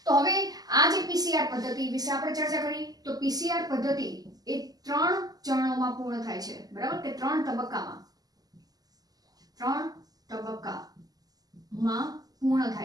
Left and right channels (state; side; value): late; left; 0.18 ms